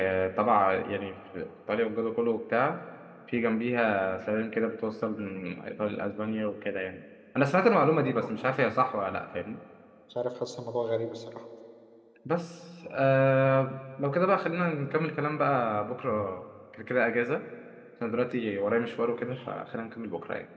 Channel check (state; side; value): identical; both; correlation 1.00